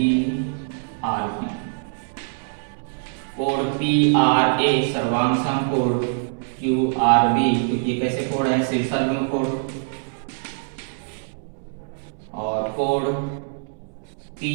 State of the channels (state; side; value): silent; left; digital silence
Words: आर बी। कोण पी आर ए सर्वांशम कोण क्यू आर बी, क्योंकि कैसे कोण है? शीर्षाभिमुख कोण। और कोण पी